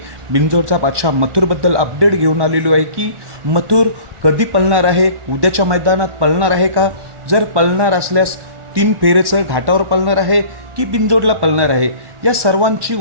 बिंजोडचा बादशाह मथुरबद्दल अपडेट घेऊन आलेलो आहे की मथुर कधी पळणार आहे, उद्याच्या मैदानात पळणार आहे का, जर पळणार असल्यास 3 फेरेचं घाटावर पळणार आहे की बिंजोडला पळणार आहे, या सर्वांची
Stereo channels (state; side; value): late; left; 1.2 ms